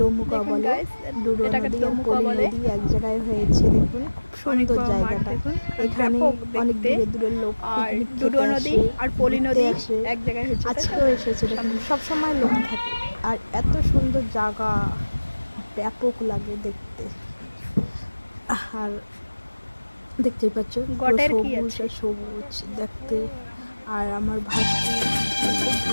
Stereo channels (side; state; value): both; inverted; correlation -1.00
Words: দোমুকা বলে, ডুডো নদী আর পলি নদী এক জায়গায় হয়েছে। দেখুন খুব সুন্দর জায়গাটা। এখানে অনেক দূরে দূরের লোক পিকনিক খেতে আসে, ঘুরতে আসে। আজকেও এসেছে, দেখুন সবসময় লোক থাকে। আর এত সুন্দর জায়গা, ব্যাপক লাগে দেখতে। আর দেখতেই পাচ্ছ সবুজ আর সবুজ দেখতে। আর আমার ভাস্তি খুব